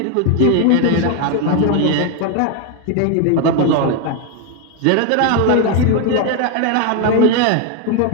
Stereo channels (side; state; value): both; different; correlation 0.01